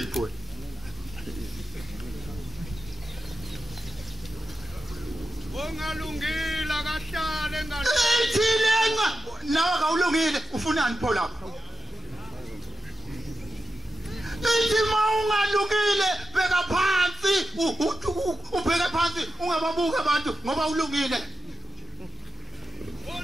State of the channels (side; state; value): both; normal; correlation 0.91